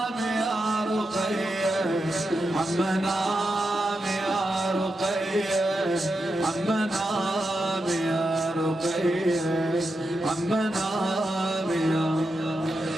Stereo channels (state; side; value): normal; both; correlation 0.87